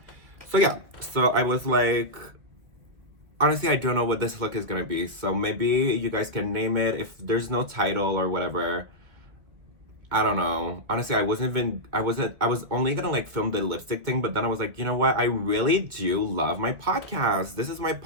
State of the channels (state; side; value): late; left; 1.9 ms